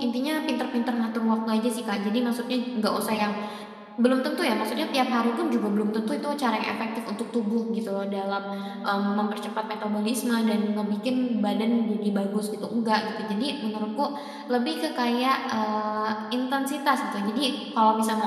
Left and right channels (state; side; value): identical; both; correlation 1.00